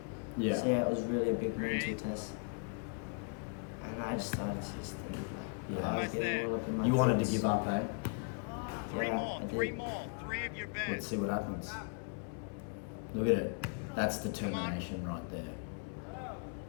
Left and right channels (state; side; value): quieter; right; 38.8 dB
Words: Yeah. So yeah, it was really a big mental test. And I just started to just think like, Yeah. I was getting all up in my You wanted to thoughts. give up, eh? Three Yeah, more. I did. Three more. Three of your Let's best. see what happens. Look at it. That's determination right there.